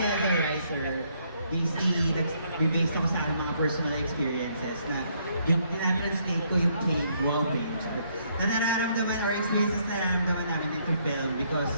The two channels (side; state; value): both; inverted; correlation -0.70